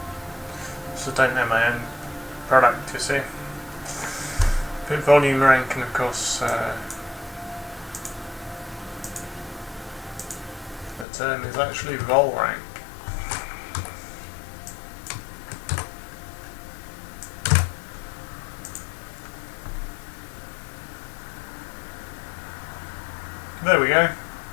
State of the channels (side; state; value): right; drops out; at 11.1 s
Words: So don't know my own product, you see. But volume rank, and of course the term is actually vol rank. There we go.